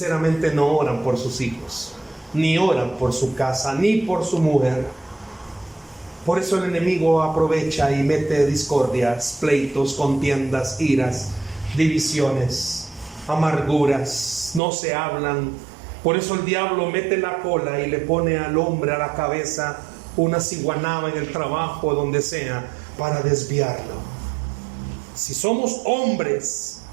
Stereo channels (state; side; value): drops out; left; at 14.6 s